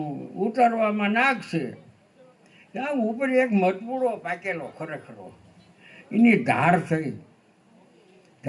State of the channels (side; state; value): both; identical; correlation 1.00